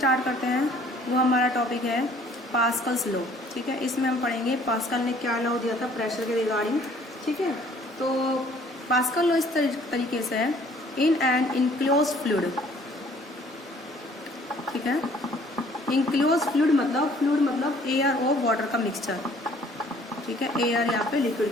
करते हैं वो हमारा टॉपिक है पास्कल्स लॉ। ठीक है, इसमें हम पढ़ेंगे पास्कल ने क्या लॉ दिया था प्रेशर के रिगार्डिंग। ठीक है, तो पास्कल लॉ इस तरीके से है, इन एन इनक्लोज फ्लूइड। ठीक है, इनक्लोज फ्लूइड मतलब एयर और वाटर का मिक्सचर। ठीक है, एयर यहाँ पे लिक्विड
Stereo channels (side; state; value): both; normal; correlation 0.57